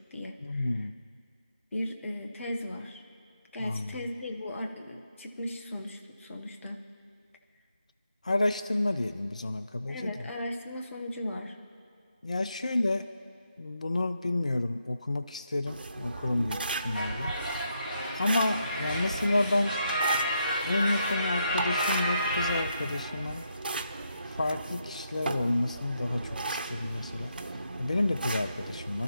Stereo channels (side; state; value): both; inverted; correlation -0.80